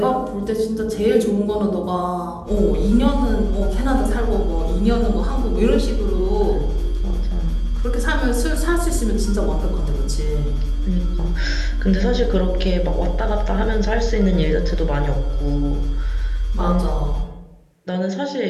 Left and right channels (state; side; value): identical; both; correlation 1.00